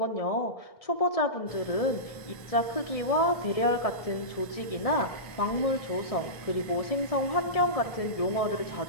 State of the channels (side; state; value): right; late; 1.7 ms